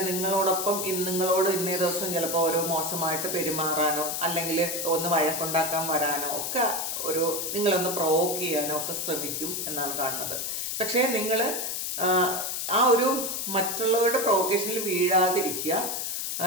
നിങ്ങളോടൊപ്പം നിങ്ങളോട് ഇന്നേ ദിവസം ചിലപ്പോൾ ഒരു മോശമായിട്ട് പെരുമാറാനോ അല്ലെങ്കിൽ ഒന്ന് വഴക്കുണ്ടാക്കാൻ വരാനോ ഒക്കെ നിങ്ങളൊന്ന് പ്രൊവോക്ക് ചെയ്യാനോ ഒക്കെ ശ്രമിക്കും എന്നാണ് കാണുന്നത്. പക്ഷേ നിങ്ങൾ ആ ഒരു മറ്റുള്ളവരുടെ പ്രൊവോക്കേഷനിൽ വീഴാതിരിക്കുക.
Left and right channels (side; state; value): left; noise; hiss, 2 dB below the sound